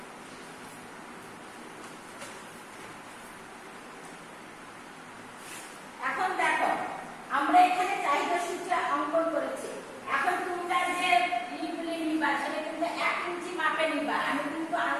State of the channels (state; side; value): identical; both; correlation 1.00